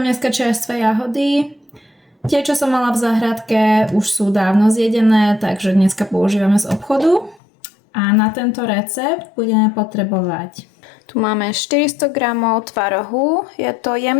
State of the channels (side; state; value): right; drops out; at 7.4 s